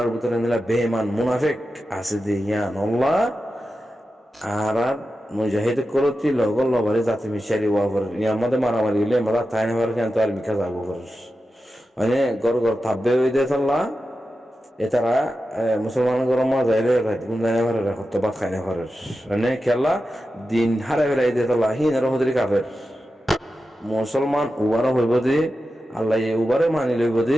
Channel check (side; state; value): both; normal; correlation 0.91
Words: ভিতরে নিলা বেমান মুনাফিক আছে যে ইয়ানল্লাহ আর মুজাহিদ করতি লগল লবারে জাতি মিশারি ওয়াবর ইয়ামাদে মারামারি হইলে আমরা তাই নেবার কিন্তু আর মিকা যাবো করিস মানে গড় থাকবে ওই দিয়ে তাল্লা এতারা মুসলমান গরমা যাইলে গুন্দানে ভারে রাখত বা খাইনে ভারে মানে খেলা দিন হারে ফেলাই দিয়ে তাল্লা হিন আর হদরি কাফের মুসলমান উবারও হইব যে আল্লাহ উবারে মানি লইব